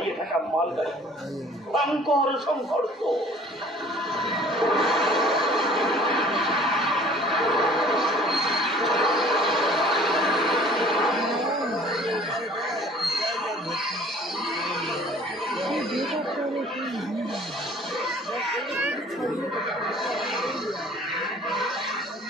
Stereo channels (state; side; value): normal; both; correlation 0.51